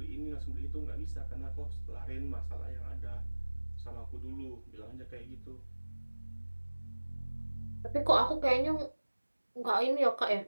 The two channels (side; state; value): both; inverted; correlation -1.00